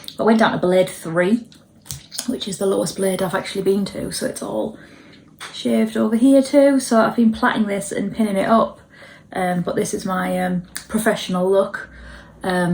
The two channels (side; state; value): both; identical; correlation 1.00